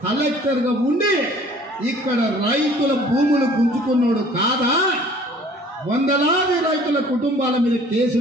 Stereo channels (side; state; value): both; normal; correlation 0.52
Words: కలెక్టర్ గా ఉండి ఇక్కడ రైతుల భూములు గుంజుకున్నాడు కాదా? 100లాది రైతుల కుటుంబాల మీద